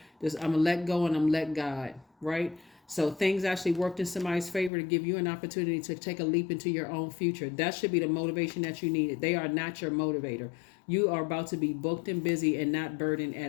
Just, I'm going to let go and I'm let God, right? So things actually worked in somebody's favor to give you an opportunity to take a leap into your own future. That should be the motivation that you needed. They are not your motivator. You are about to be booked and busy and not burdened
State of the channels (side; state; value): right; drops out; at 4.7 s